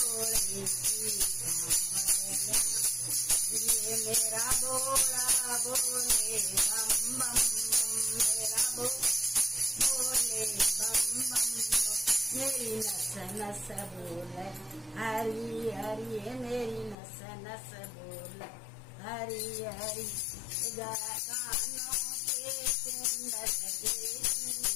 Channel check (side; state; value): right; drops out; at 16.9 s